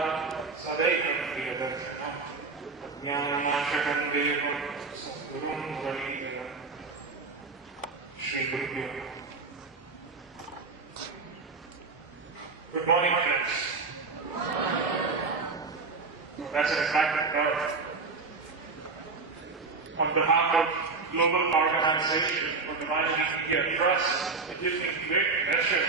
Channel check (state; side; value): quieter; left; 4.3 dB